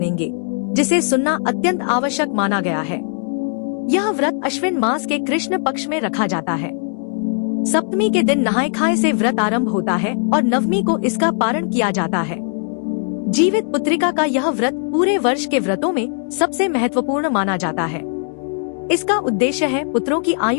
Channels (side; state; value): right; silent; 63 dB below the other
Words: जिसे सुनना अत्यंत आवश्यक माना गया है। यह व्रत अश्विन मास के कृष्ण पक्ष में रखा जाता है। सप्तमी के दिन नहाए खाए से व्रत आरंभ होता है और नवमी को इसका पारण किया जाता है। जीवित पुत्रिका का यह व्रत पूरे वर्ष के व्रतों में सबसे महत्वपूर्ण माना जाता है। इसका उद्देश्य है पुत्रों की